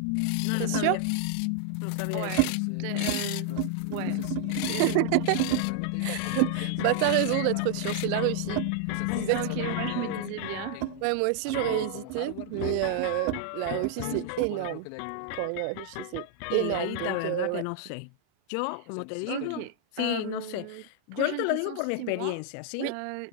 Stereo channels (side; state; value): both; different; correlation 0.00